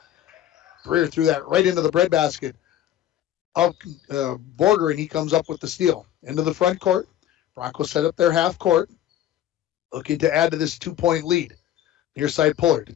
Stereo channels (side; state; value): right; quieter; 11.9 dB